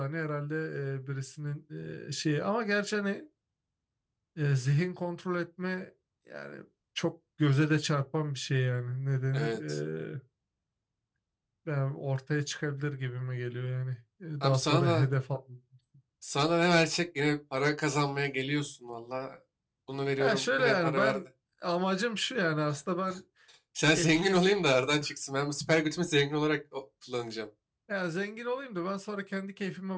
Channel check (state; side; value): identical; both; correlation 1.00